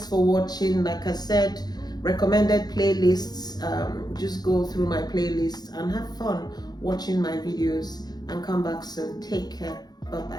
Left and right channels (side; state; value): right; late; 0.19 ms